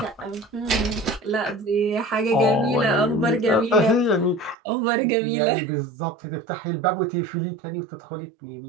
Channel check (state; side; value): drops out; left; at 4.5 s